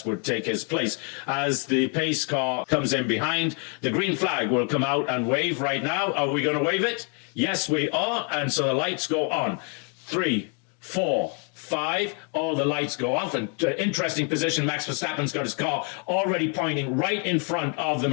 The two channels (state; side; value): quieter; right; 36.9 dB